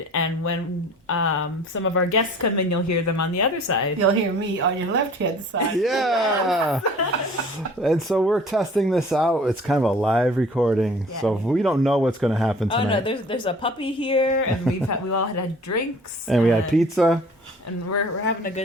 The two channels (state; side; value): normal; both; correlation 0.48